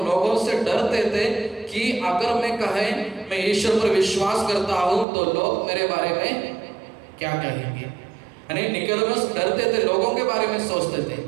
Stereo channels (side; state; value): left; drops out; at 5.1 s